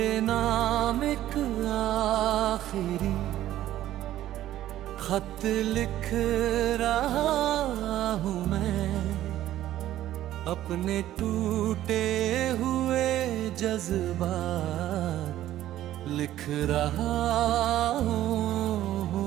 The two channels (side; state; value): left; quieter; 13.3 dB